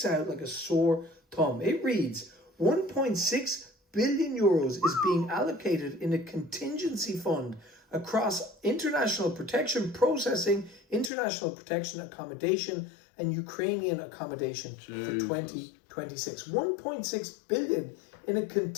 out like a sore thumb. It reads, 1.6 billion euros is being allocated in a contingency fund across international protection processing, international protection accommodation, and Ukrainian accommodation for 2026. 1.6 billion in a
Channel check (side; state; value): right; drops out; at 11.1 s